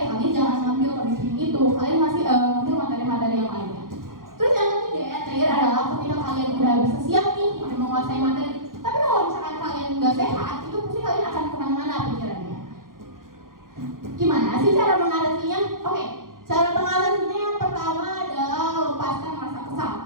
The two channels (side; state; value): left; late; 0.91 ms